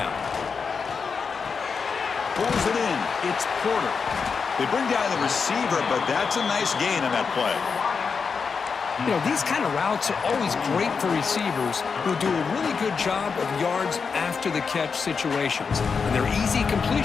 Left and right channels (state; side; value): quieter; right; 5.5 dB